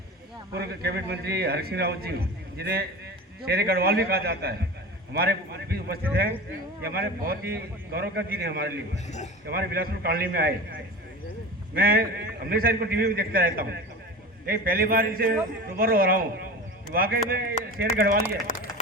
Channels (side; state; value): both; normal; correlation 0.32